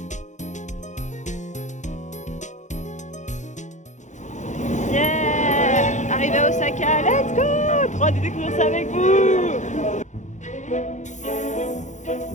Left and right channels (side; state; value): right; late; 0.35 ms